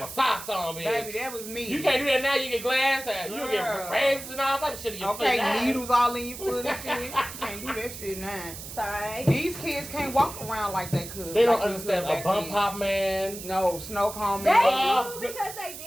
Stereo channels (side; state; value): right; noise; hiss, 11 dB below the sound